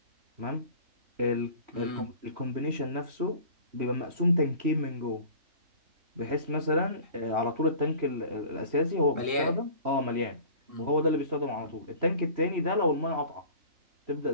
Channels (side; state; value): left; late; 3.0 ms